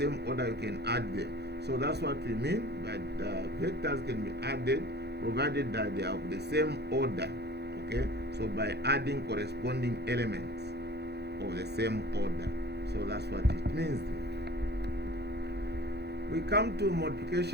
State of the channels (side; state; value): left; late; 0.48 ms